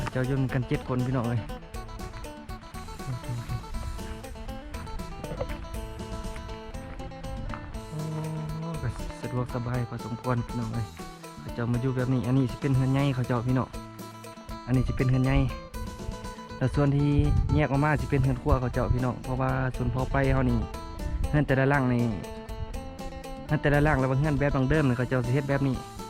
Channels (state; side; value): identical; both; correlation 1.00